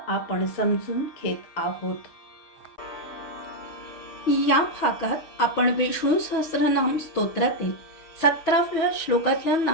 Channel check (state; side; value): late; right; 6.2 ms